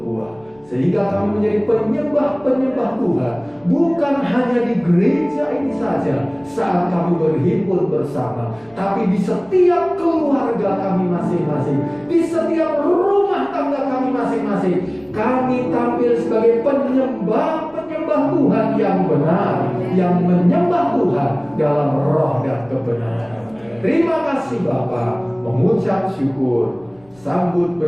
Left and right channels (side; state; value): left; noise; rumble, 30 dB below the sound